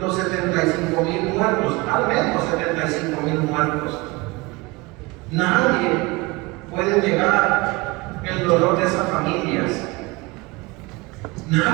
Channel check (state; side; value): quieter; left; 23.8 dB